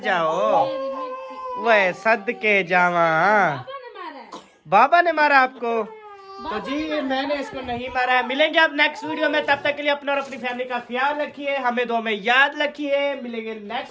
वह सदके जावा, बाबा ने मारा आपको? तो जी मैंने इसको नहीं मारा है। मिलेंगे अब नेक्स्ट वीडियो में, तब तक के लिए अपना और अपनी फैमिली का ख्याल रखिए, हमें दो में याद रखिए। मिलेंगे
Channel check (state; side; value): identical; both; correlation 1.00